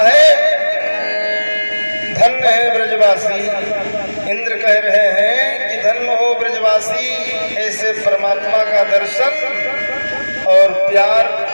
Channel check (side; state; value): both; inverted; correlation -1.00